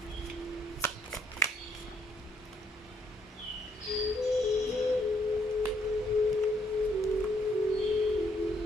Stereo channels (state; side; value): normal; both; correlation 0.70